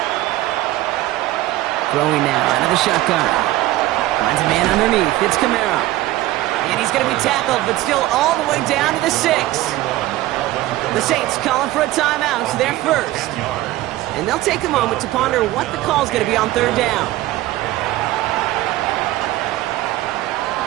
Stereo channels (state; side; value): quieter; left; 16.4 dB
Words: Throwing now out of the shotgun. Finds a man underneath. It's Kamara. And he's going to be tackled, but still all the way down to the 6. The Saints calling for a timeout. They're first. And they'll take a moment to ponder what the call is going to be on 3rd down.